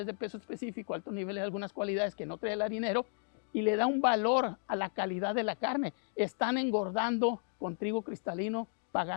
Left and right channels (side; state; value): right; silent; 55 dB below the other